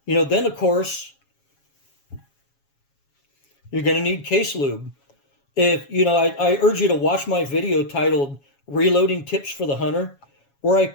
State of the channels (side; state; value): right; late; 7.2 ms